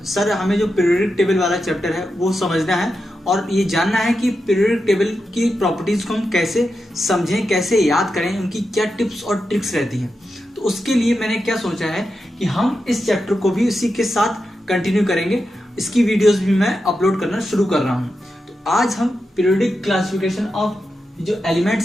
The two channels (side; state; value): both; normal; correlation 0.89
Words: सर हमें जो पीरियोडिक टेबल वाला चैप्टर है वो समझना है और ये जानना है कि पीरियोडिक टेबल की प्रॉपर्टीज को हम कैसे समझें, कैसे याद करें, उनकी क्या टिप्स और ट्रिक्स रहती हैं। तो उसके लिए मैंने क्या सोचा है कि हम इस चैप्टर को भी उसी के साथ कंटिन्यू करेंगे। इसकी वीडियोस भी मैं अपलोड करना शुरू कर रहा हूँ। तो आज हम पीरियोडिक क्लासिफिकेशन ऑफ जो